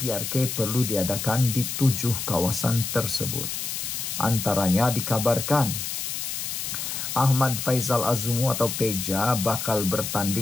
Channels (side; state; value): left; noise; hiss, 4 dB below the sound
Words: perlu diadakan di 7 kawasan tersebut. Antaranya dikabarkan Ahmad Faizal Azumu atau Peja bakal